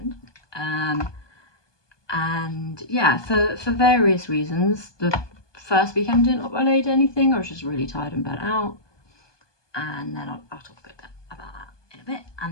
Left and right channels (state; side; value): late; right; 1.2 ms